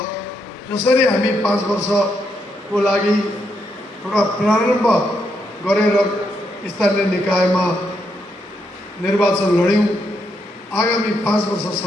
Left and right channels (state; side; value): normal; both; correlation 0.79